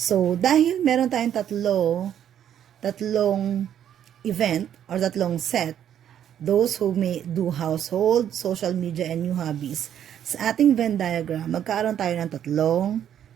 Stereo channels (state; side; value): quieter; left; 9.9 dB